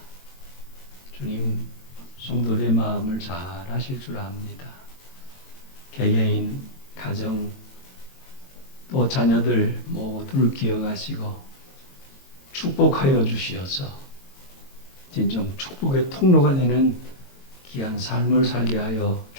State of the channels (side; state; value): right; late; 22 ms